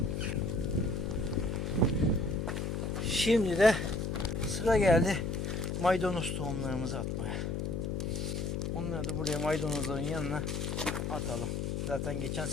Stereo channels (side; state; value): left; noise; hum, 1 dB below the sound